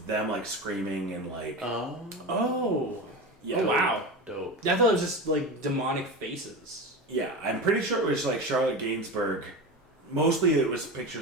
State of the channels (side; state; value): both; normal; correlation 0.25